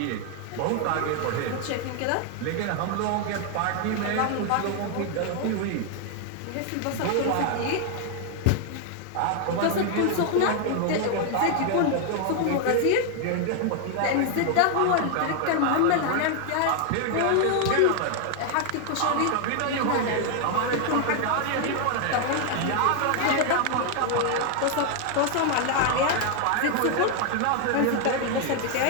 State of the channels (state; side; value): different; both; correlation 0.00